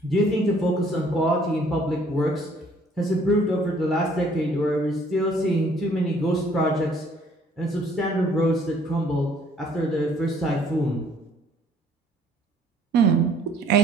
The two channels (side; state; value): both; normal; correlation 0.60